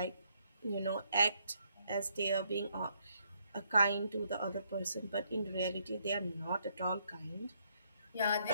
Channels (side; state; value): both; inverted; correlation -0.73